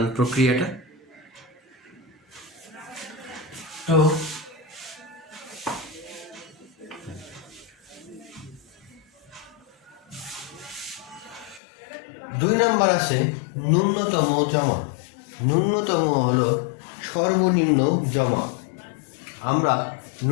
প্রক্রিয়াটা। তো 2 নাম্বার আছে ন্যূনতম জমা। ন্যূনতম হলো সর্বনিম্ন জমা। আমরা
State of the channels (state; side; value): drops out; right; at 11.6 s